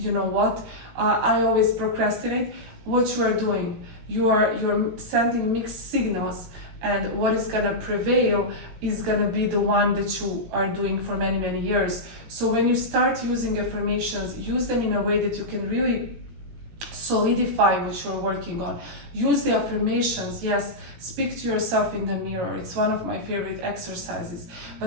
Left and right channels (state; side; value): late; left; 18 ms